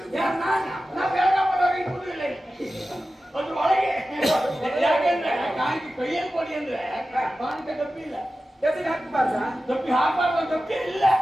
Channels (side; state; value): both; normal; correlation 0.94